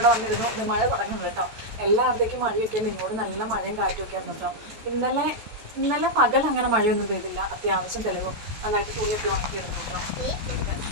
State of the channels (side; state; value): left; late; 14 ms